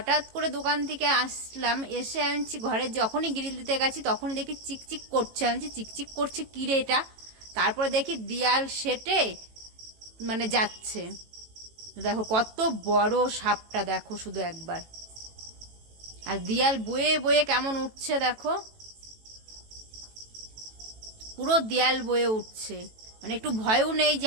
করে দোকান থেকে আসলাম, এসে আমি ঘরে যখনই গ্রিল দিতে গেছি তখনই দেখি চিকচিক করছে। আমি চিকচিক করছে কী রে এটা? তারপরে দেখি দিয়াল সেটে মানে যাচ্ছে। দেখো কত বড় সাপটা, দেখো শুধু একবার। আর দিয়াল বয়ে বয়ে কেমন উঠছে দেখো, পুরো দেয়াল বয়ে উঠছে। মানে একটু ভয়ও নেই যে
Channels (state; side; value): late; left; 18 ms